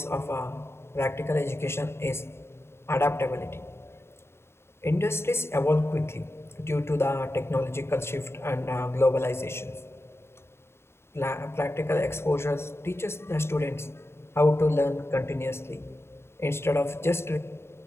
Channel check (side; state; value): right; late; 0.12 ms